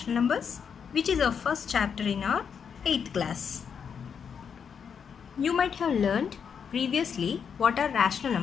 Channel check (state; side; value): quieter; right; 6.9 dB